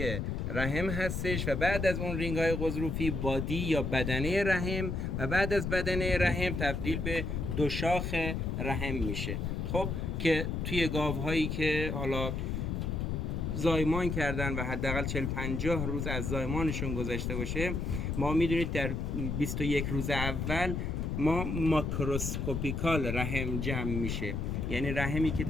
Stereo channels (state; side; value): noise; left; rumble, 2 dB below the sound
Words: رحم هستش و بعد از اون رینگ های قضروفی بادی یا بدنه رحم و بعد از بدنه رحم تبدیل به دو شاخ رحم میشه. خب که توی گاوهایی که حالا زایمان کردن و حداقل 40-50 روز از زایمانشون گذشته باشه، ما میدونید در 21 روز اول ما ماکروسکوپیکال رحم جمع میشه، یعنی رحمی که